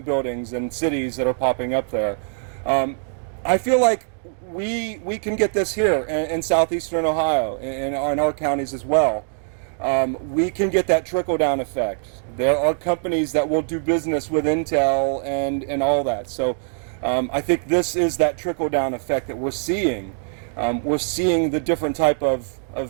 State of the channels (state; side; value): silent; left; digital silence